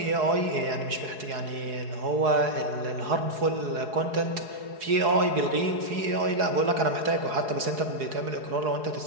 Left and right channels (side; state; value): left; late; 4.8 ms